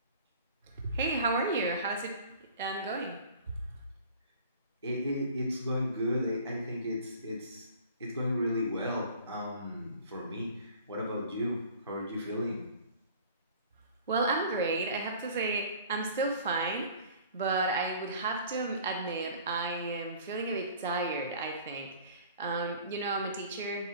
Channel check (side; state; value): both; inverted; correlation -0.47